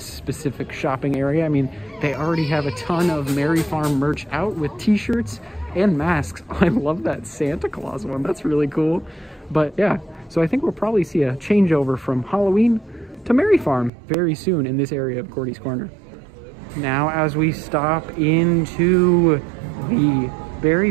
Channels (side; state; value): left; drops out; at 13.9 s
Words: specific shopping area. I mean, they already have a ton of Merry Farm merch out with t-shirts and masks. I love that Santa Claus one, that's really cool. But yeah, so I think we'll probably see a changeover from Halloween to Merry Farm very soon in this area of Cordy's Corner. Now, as we stop into the